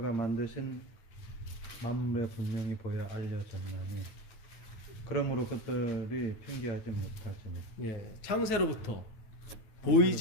만드신 만물에 분명히 보여 알려졌나니 그러므로 그들이 핑계하지 못하지니. 예, 창세로부터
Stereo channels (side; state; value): right; late; 9.2 ms